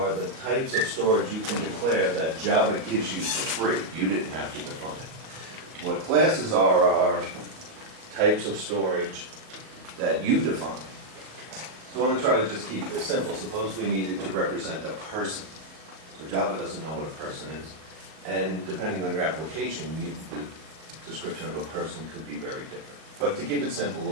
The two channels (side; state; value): left; late; 38 ms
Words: the types of storage you can declare that Java gives you for free. You didn't have to define it. What classes are types of storage that you define. So I want to try to just keep this simple. Suppose we needed to represent a person. So Java doesn't know what a person is. And depending on your application, the description of a person could be very different. But to keep it simple,